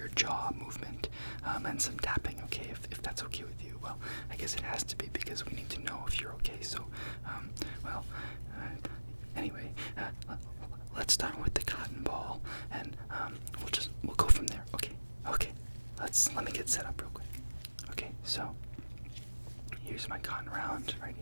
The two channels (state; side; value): inverted; both; correlation -1.00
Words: jaw movement and some tapping. Okay, if that's okay with you. Well, I guess it has to be, because we need to know if you're okay. So, anyway, let's start with the cotton ball, and we'll go from there. Okay. Let me get set up real quick. Okay, so here's my cotton round right